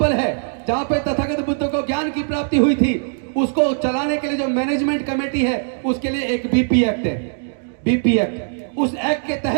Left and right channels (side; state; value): left; silent; digital silence